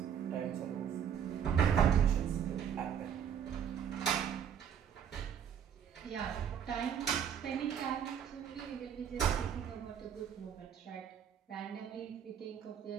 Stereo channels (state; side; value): quieter; left; 8.4 dB